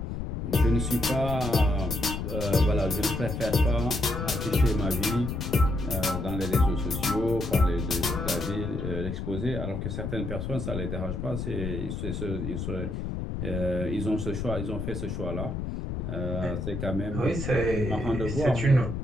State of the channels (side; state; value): left; noise; rumble, 4 dB below the sound